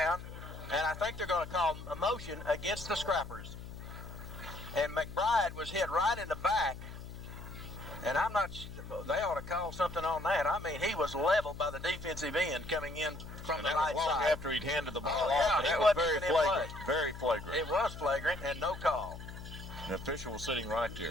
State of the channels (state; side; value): noise; left; hum, 12 dB below the sound